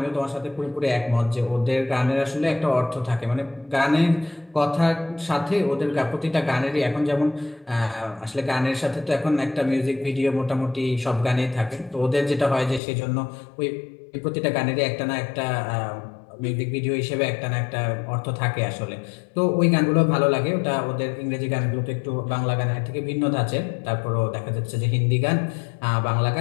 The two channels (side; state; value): right; drops out; at 12.8 s